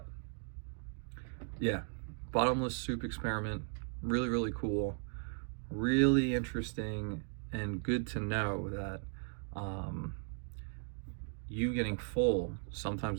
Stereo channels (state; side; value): silent; left; 53 dB below the other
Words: yeah, bottomless soup experiment, really, really cool, really interesting, and good to know that you getting full